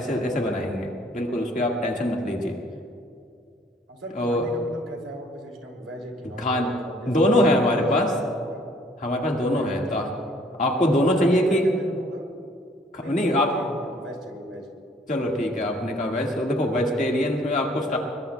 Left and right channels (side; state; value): both; normal; correlation 0.59